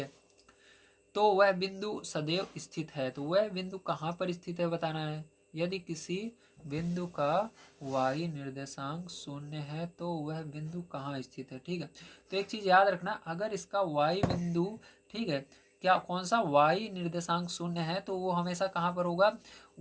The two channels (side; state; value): both; identical; correlation 1.00